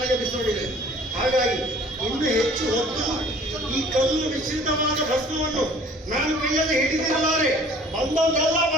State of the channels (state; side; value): normal; both; correlation 0.51